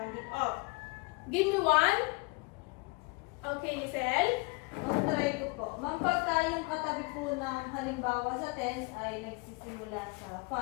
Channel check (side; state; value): right; quieter; 28.9 dB